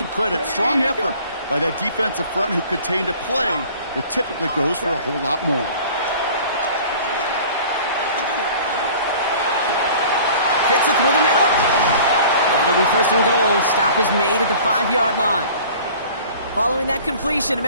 credit. Strong effort by that defensive front who contained a play that typically goes for a whole lot more. Fits it through the middle. And it'll be 1st and goal. Stop is made at the 5-yard line. Following that completion,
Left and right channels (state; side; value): inverted; both; correlation -0.46